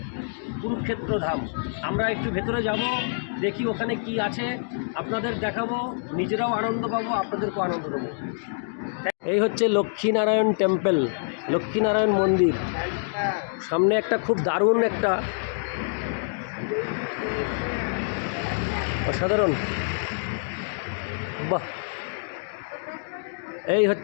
কুরুক্ষেত্র ধাম। আমরা একটু ভেতরে যাব, দেখি ওখানে কি আছে, আপনাদের দেখাবো, নিজেরাও আনন্দ পাবো, আপনাদেরকেও আনন্দ দেবো। এই হচ্ছে লক্ষ্মীনারায়ণ টেম্পল, লক্ষ্মীনারায়ণ মন্দির। সামনে একটা খুব দারুণ একটা অসাধারণ, বাহ, এই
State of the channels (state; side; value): silent; right; digital silence